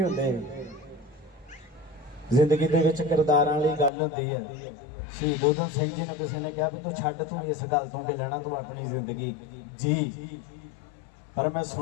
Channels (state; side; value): drops out; right; at 3.9 s